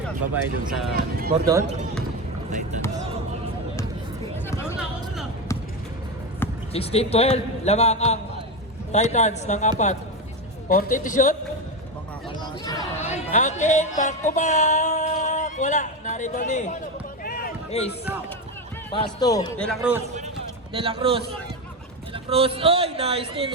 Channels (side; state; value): both; normal; correlation 0.15